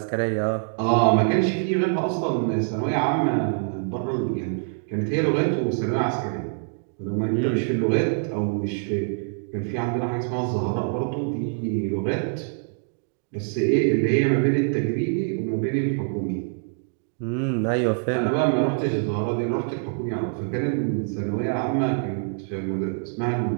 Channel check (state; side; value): silent; left; digital silence